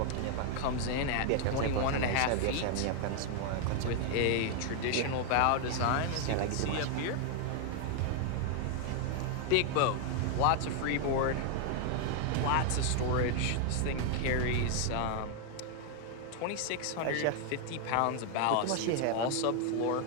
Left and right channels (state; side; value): different; both; correlation 0.00